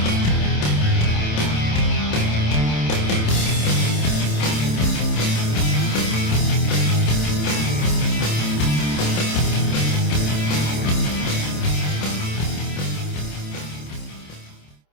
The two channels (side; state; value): right; late; 27 ms